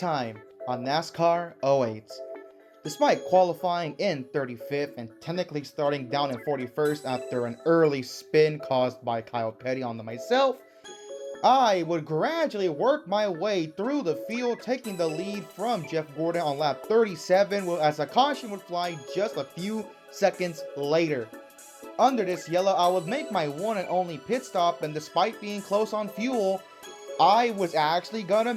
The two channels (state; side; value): identical; both; correlation 1.00